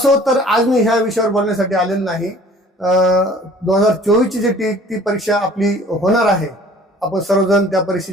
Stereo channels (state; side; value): normal; both; correlation 0.51